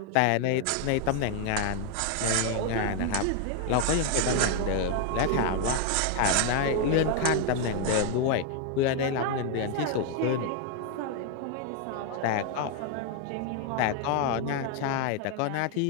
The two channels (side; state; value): both; different; correlation 0.00